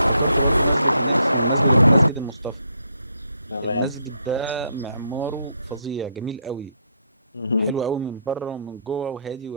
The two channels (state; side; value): inverted; both; correlation -0.73